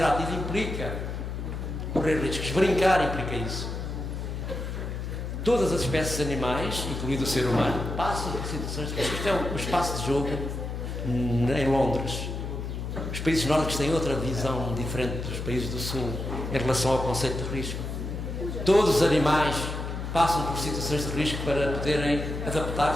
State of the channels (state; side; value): noise; left; hum, 5 dB below the sound